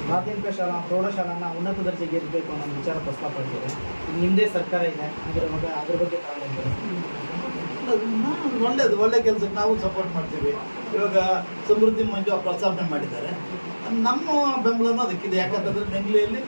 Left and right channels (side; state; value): both; inverted; correlation -1.00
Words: ಮಾಧ್ಯಮಿಕ ಶಾಲಾ ಪ್ರೌಢಶಾಲಾನ ಉನ್ನತ ದರ್ಜೆಗೆ ಏರಬೇಕು ಅನ್ನೋ ವಿಚಾರ ಪ್ರಸ್ತಾಪಿಸಿದೆ. ನಿಮ್ಮದೇ ಸರ್ಕಾರ ಇದೆ, ಅದ್ರ ಬಗ್ಗೆ ಒಳ್ಳೇದು, ಒಳ್ಳೆ ಕೆಲಸಕ್ಕೆ ನಾವು ಸಪೋರ್ಟ್ ಮಾಡ್ತೀವಿ. ಇವಾಗ ಸಮೃದ್ಧಿ ಮಂಜು ಪ್ರಸ್ತಾವನೆ ಮಾಡಿದ್ದಾರೆ, ನಮ್ಮ ಬೆಂಬಲನೂ ಅದಕ್ಕಿದೆ. ಯಾಕಂತಂದ್ರೆ ನೆಂಗ್ಲಿಯಲ್ಲಿ